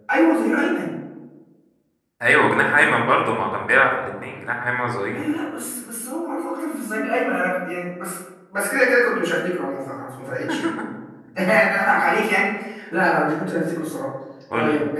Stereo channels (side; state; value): both; identical; correlation 1.00